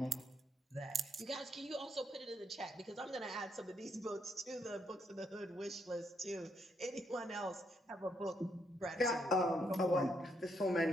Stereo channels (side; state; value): both; normal; correlation 0.76